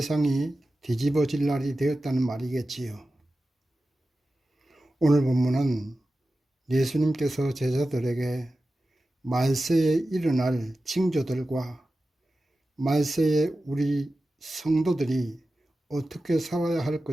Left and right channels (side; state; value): both; normal; correlation 0.94